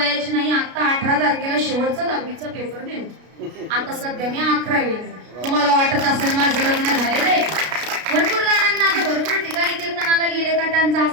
नाही. आता 18 तारखेला शेवटचा 10वीचा पेपर दिला. आता सध्या मी 11वी. तुम्हाला वाटत असेल माझं लग्न झालेलं आहे. भरपूर जणांना आता भरपूर ठिकाणी कीर्तनाला गेले का त्यांचा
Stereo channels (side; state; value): left; late; 33 ms